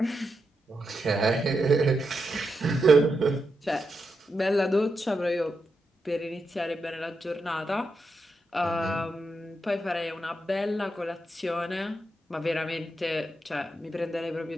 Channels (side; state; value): both; normal; correlation 0.85